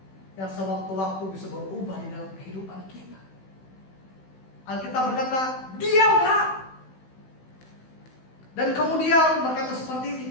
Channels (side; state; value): right; late; 16 ms